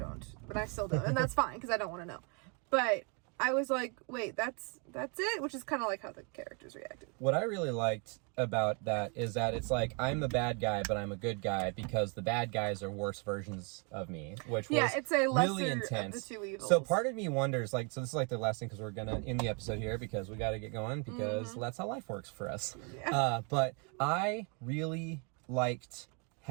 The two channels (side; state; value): left; quieter; 34.8 dB